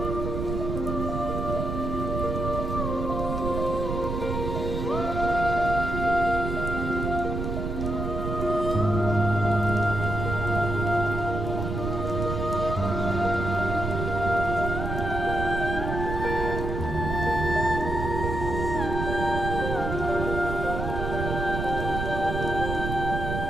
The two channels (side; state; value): right; noise; rumble, 3 dB below the sound